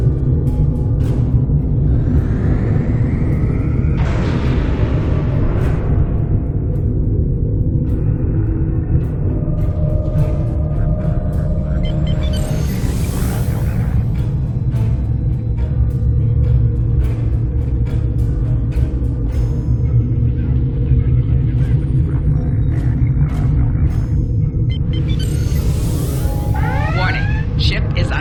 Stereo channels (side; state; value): both; identical; correlation 1.00